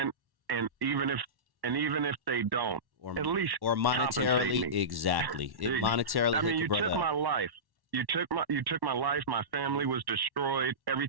even if they don't. At least monetarily, exactly. Monetarily, I mean, you took my life. You took my life. My family was destroyed.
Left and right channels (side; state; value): left; late; 1.1 ms